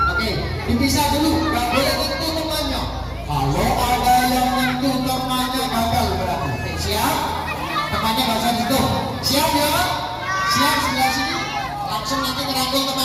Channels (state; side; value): identical; both; correlation 1.00